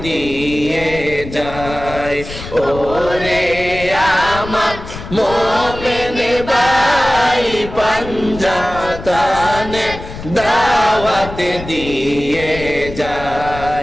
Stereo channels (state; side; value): noise; left; rumble, 12 dB below the sound